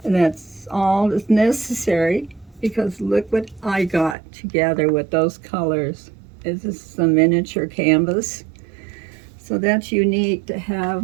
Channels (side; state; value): left; drops out; at 4.2 s